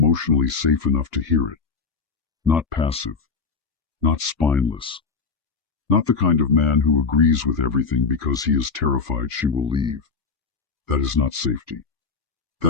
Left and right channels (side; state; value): right; quieter; 5.0 dB